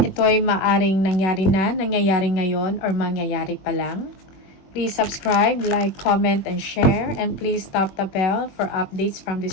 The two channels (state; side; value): late; right; 21 ms